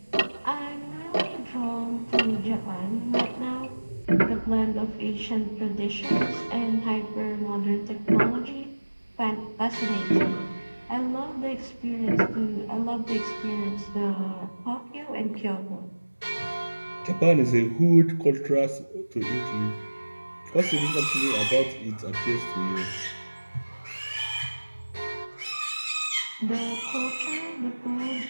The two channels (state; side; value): inverted; both; correlation -1.00